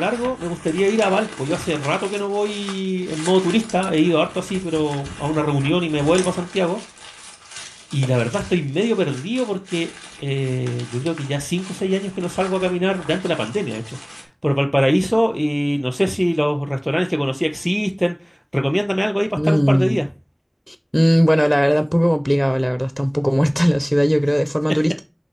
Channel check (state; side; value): identical; both; correlation 1.00